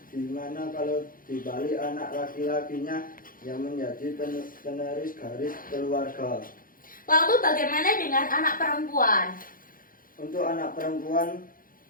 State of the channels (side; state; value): right; late; 0.41 ms